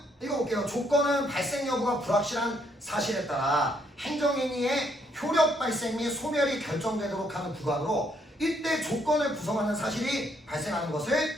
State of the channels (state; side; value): normal; both; correlation 0.71